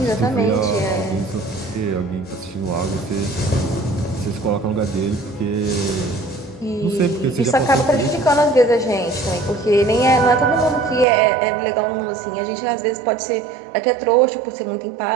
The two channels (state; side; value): drops out; left; at 11.1 s